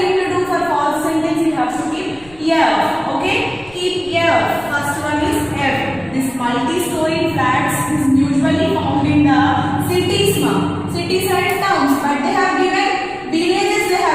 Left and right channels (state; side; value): noise; left; rumble, 25 dB below the sound